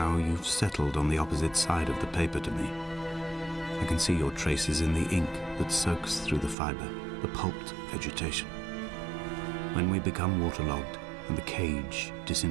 you've settled on the opposite side of the paper to me. I can see your traces in the ink that soaks through the fiber, the pulped vegetation. When we become waterlogged and the cage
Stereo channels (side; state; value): left; drops out; at 6.6 s